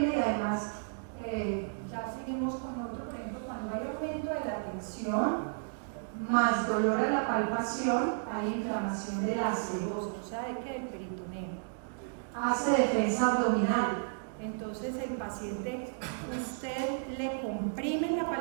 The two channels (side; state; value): left; silent; digital silence